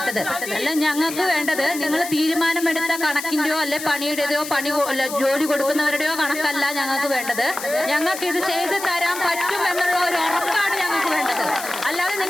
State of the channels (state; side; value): noise; left; hiss, 9 dB below the sound